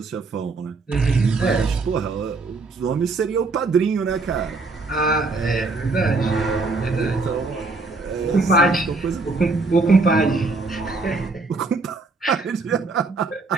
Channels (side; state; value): left; quieter; 3.7 dB